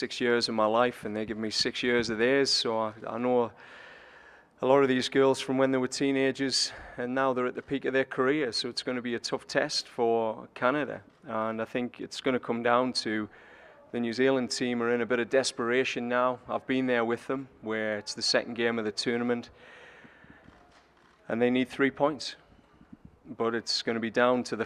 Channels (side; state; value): both; identical; correlation 1.00